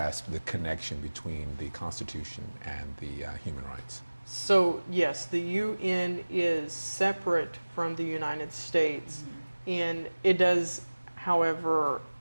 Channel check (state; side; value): inverted; both; correlation -1.00